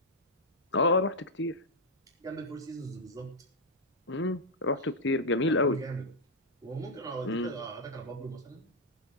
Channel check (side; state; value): both; normal; correlation -0.05